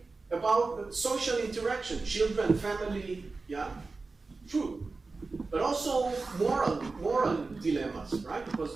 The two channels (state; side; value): quieter; left; 3.8 dB